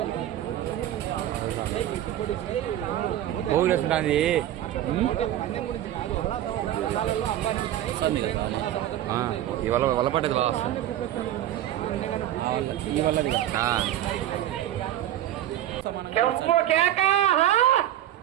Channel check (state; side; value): quieter; left; 12.5 dB